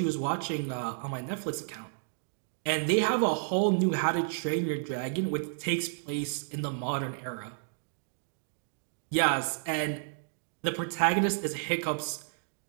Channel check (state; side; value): silent; left; digital silence